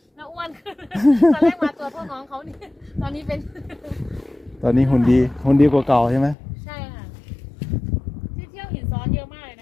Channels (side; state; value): right; drops out; at 6.4 s